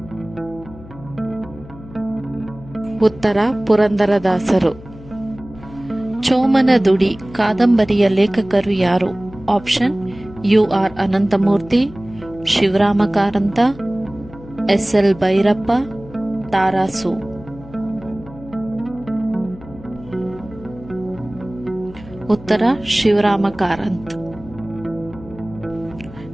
ಉತ್ತರ ಪುರಂದರದಾಸರು. ಚೋಮನದುಡಿ ಕಾದಂಬರಿಯ ಲೇಖಕರು ಯಾರು? Option U.R.. Ananthamurthy, Shivarama Karanth, SL. Bhyrappa, TaRaSu. ಉತ್ತರ ಶಿವರಾಮ ಕಾರಂತ್.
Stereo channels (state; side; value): noise; left; hum, 18 dB below the sound